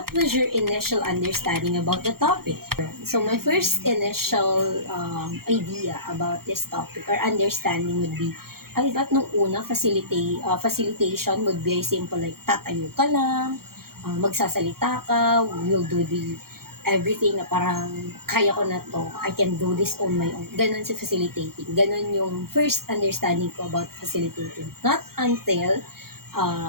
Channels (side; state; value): left; late; 0.94 ms